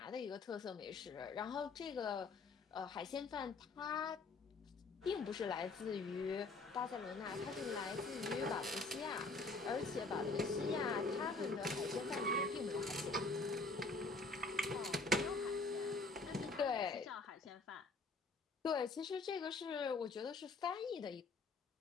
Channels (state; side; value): quieter; right; 3.7 dB